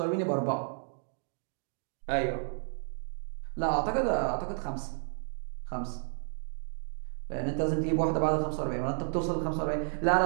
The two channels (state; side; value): silent; left; digital silence